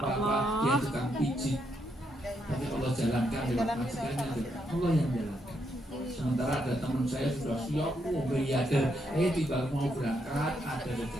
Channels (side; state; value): both; normal; correlation 0.78